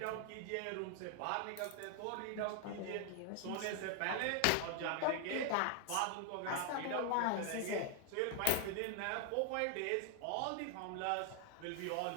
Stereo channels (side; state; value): both; different; correlation 0.00